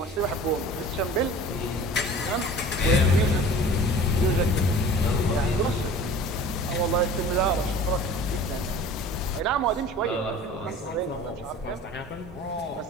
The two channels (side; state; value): both; normal; correlation 0.42